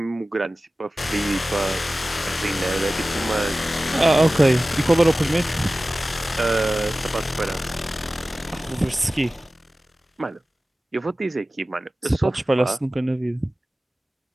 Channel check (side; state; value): both; normal; correlation 0.96